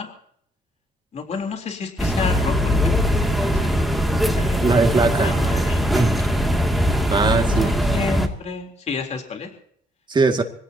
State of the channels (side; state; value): both; normal; correlation 0.74